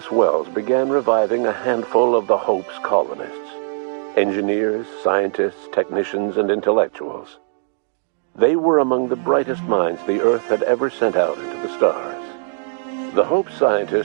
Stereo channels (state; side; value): silent; left; digital silence